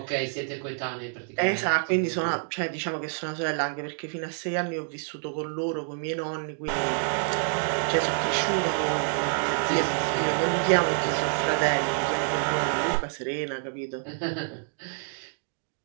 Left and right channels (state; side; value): silent; left; digital silence